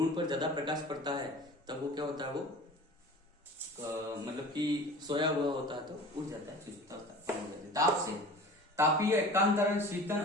पर ज्यादा प्रकाश पड़ता है तब वो क्या होता है, वो मतलब कि सोया हुआ होता है तो उठ जाता है, सुषुप्तावस्था हो जाती है। ताप से, तापीय एकांतरण, शीतन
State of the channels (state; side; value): normal; both; correlation 0.39